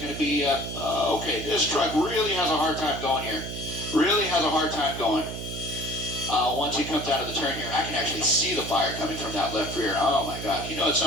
to be, okay, this truck really has a hard time going here. Once he comes out of the turn here, I can actually see the fire coming from that left rear. Oh my God, you know, at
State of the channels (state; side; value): noise; right; hum, 7 dB below the sound